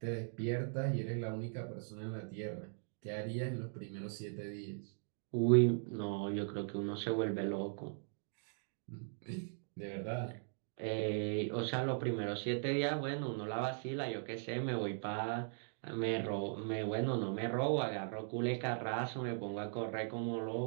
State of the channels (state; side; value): silent; left; digital silence